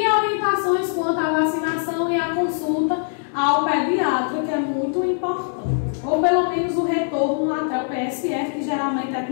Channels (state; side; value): silent; right; digital silence